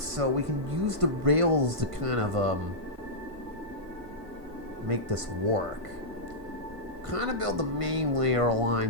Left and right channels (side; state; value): left; late; 1.5 ms